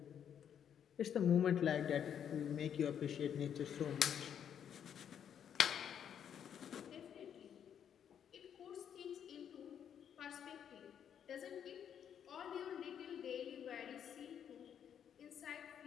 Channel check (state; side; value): quieter; right; 8.7 dB